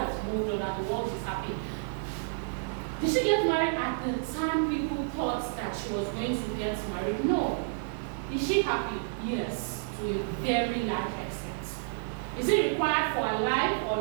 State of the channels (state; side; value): silent; left; digital silence